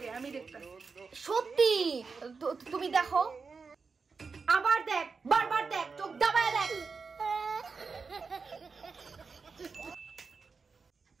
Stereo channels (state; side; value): quieter; left; 4.9 dB